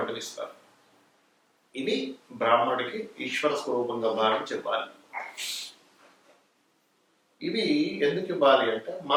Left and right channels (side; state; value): both; identical; correlation 1.00